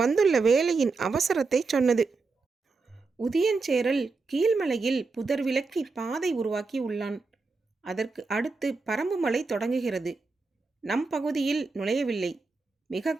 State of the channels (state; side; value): quieter; left; 4.1 dB